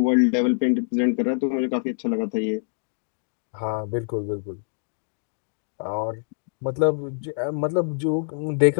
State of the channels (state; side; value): silent; right; digital silence